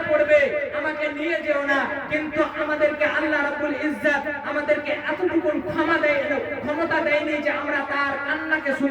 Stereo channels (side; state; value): both; identical; correlation 1.00